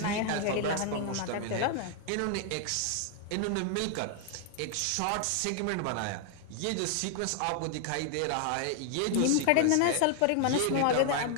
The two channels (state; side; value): different; both; correlation 0.00